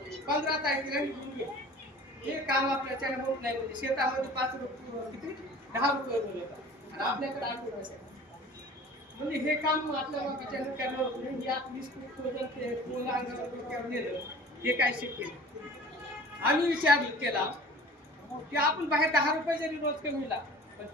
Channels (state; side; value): normal; both; correlation 0.44